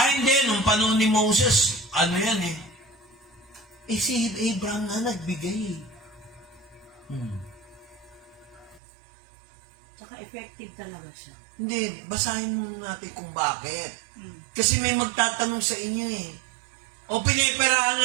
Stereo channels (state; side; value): drops out; left; at 8.8 s